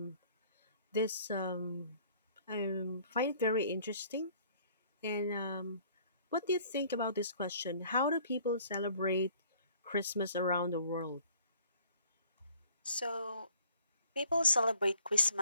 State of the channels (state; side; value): inverted; both; correlation -0.57